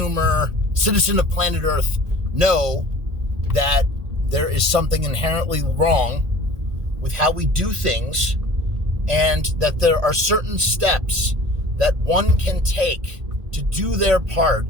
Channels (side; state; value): left; late; 1.9 ms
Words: planet Earth know that there is something inherently wrong with how we do things, and that there are certain steps that one can take to do their part